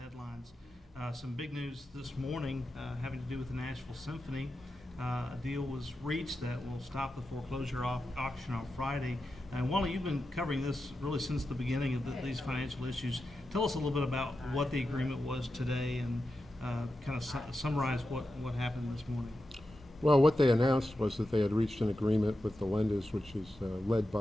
headlines. Some big news this morning having to do with the Nashville Symphony. A deal was reached that will stop the foreclosure auction on Friday. And Wally, you've been covering this really since the beginning of these financial issues. Tell us a little bit about what the agreement was today and kind of summarize what happened this morning. Well, what they announced was that they had reached an agreement with the lenders, which is led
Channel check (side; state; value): both; normal; correlation 0.90